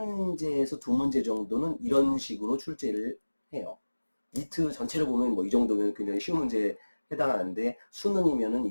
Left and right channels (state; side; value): inverted; both; correlation -1.00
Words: 두 문제 정도는 이런 식으로 출제를 해요. 리트 전체를 보면 뭐 이 정도면 굉장히 쉬운 문제에 해당하는데, 수능이면은